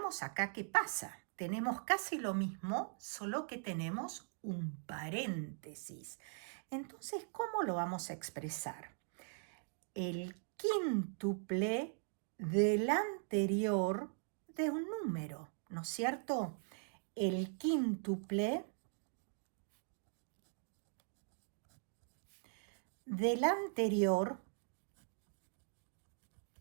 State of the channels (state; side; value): silent; left; digital silence